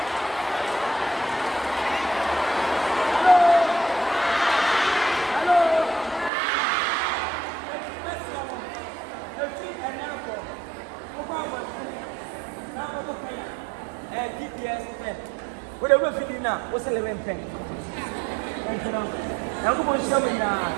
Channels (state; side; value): drops out; left; at 6.3 s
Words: GPS what are we feeling now? What's the level pen? I'm going to show me now.